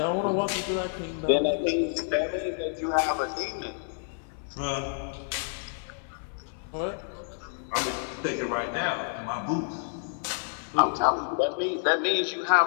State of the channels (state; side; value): silent; right; 59 dB below the other